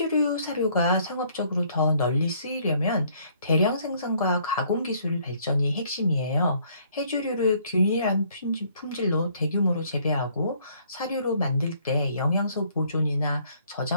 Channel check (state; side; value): inverted; both; correlation -0.64